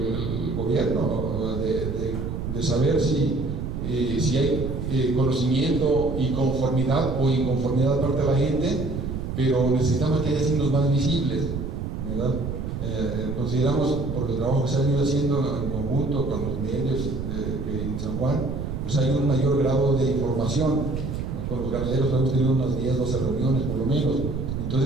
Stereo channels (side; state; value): right; noise; rumble, 4 dB below the sound